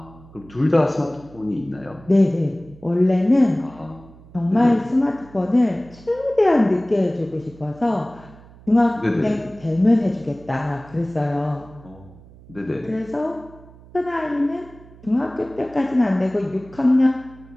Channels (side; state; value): right; noise; hum, 22 dB below the sound